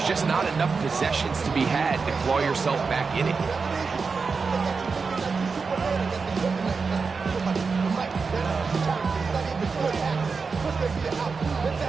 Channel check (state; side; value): quieter; left; 4.8 dB